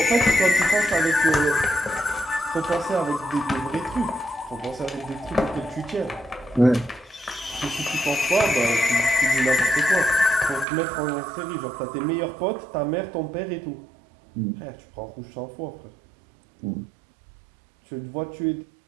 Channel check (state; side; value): drops out; left; at 10.7 s